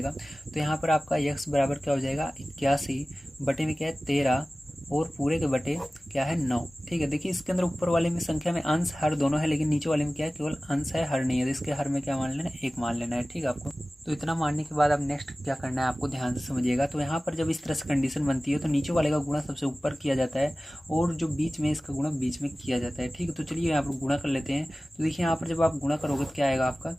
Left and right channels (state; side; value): normal; both; correlation 0.97